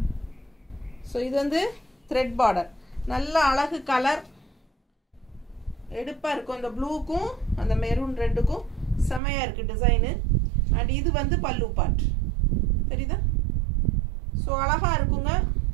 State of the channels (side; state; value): left; drops out; at 9.2 s